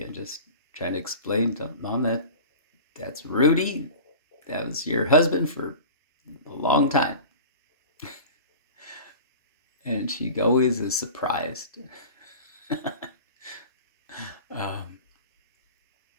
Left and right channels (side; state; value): both; inverted; correlation -0.37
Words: just trying to explain to Mom that's Rudy. That was your husband for a long time. And she always is surprised. um,